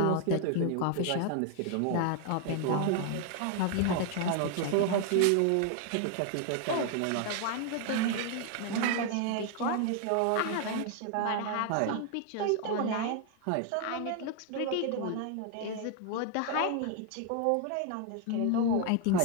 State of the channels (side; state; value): both; different; correlation 0.00